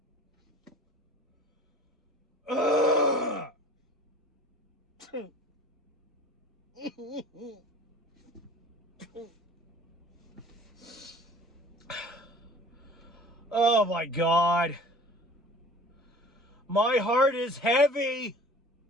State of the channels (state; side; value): normal; both; correlation 0.46